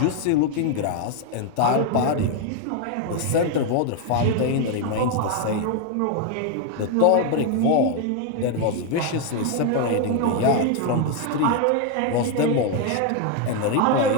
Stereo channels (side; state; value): both; different; correlation 0.01